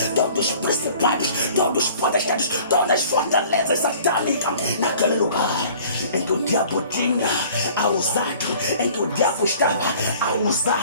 os principados, todos os potestades, todas as fortalezas satânicas, naquele lugar em que o diabo tinha a usar, em que o diabo estava a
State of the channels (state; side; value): inverted; both; correlation -0.50